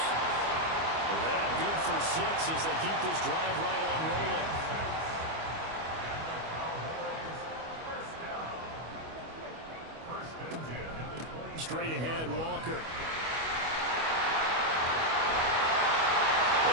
That good for 6 as they keep this drive right on rolling. straight ahead, Walker.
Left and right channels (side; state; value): left; late; 25 ms